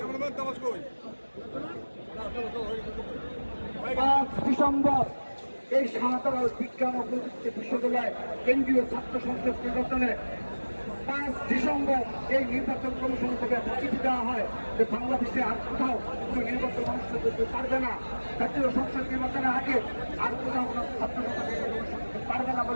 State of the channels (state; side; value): inverted; both; correlation -1.00